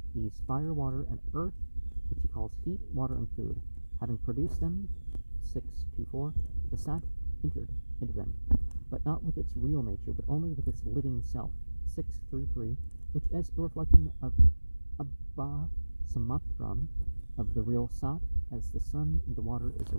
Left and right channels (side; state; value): both; inverted; correlation -1.00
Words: these fire, water, and earth, which he calls heat, water, and food. Having produced them, 6.2.4, the Sat entered into them, but not with its real nature, but only with its living self, 6.3.3, which as a reflection of Abba Samatram, of the real Sat, as the sun and the water is a